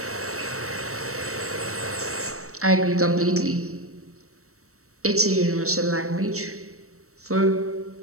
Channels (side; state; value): left; late; 0.64 ms